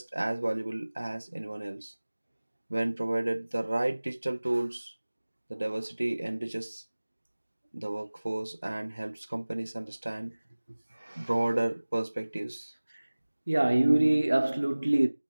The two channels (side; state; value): both; inverted; correlation -1.00